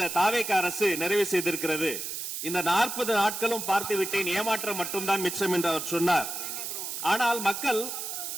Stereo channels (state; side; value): noise; right; hiss, 5 dB below the sound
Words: தாவேக அரசு நிறைவு செய்திருக்கிறது. இந்த 40 நாட்களும் பார்த்து விட்டேன், ஏமாற்றம் மட்டும்தான் மிச்சம் என்று அவர் சொன்னார். ஆனால் மக்கள்